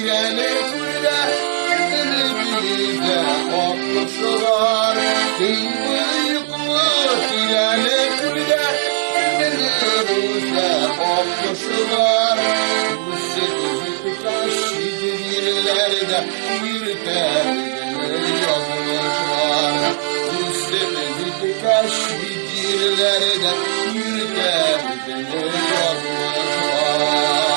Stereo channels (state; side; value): silent; left; 60 dB below the other